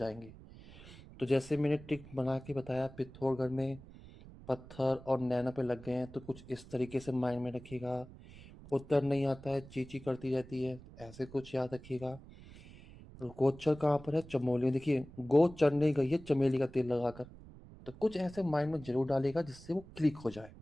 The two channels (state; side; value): noise; right; rumble, 18 dB below the sound